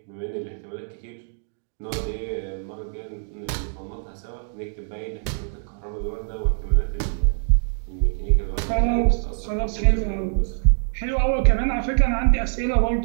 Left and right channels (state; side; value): silent; left; 62 dB below the other